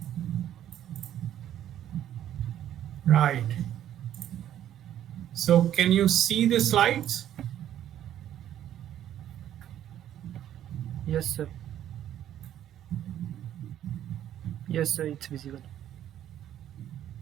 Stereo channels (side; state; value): left; quieter; 11.2 dB